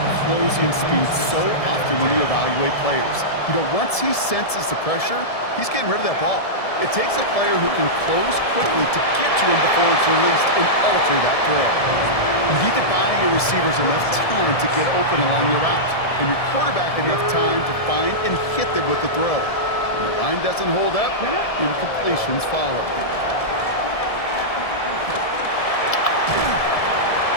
closing speed so often when you evaluate players. You know, once he senses the pressure, he's getting rid of that ball. It takes a player who can close quickly to get to him before it's released and alter that throw. You need to buy your receivers enough time to get open along your route, and your quarterback enough time to find and hit them with the throw. When the line doesn't hold up, incompletions follow.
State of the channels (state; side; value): late; right; 1.7 ms